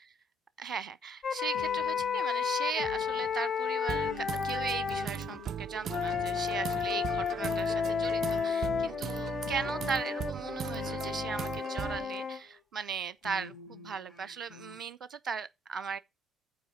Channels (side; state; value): both; normal; correlation 0.68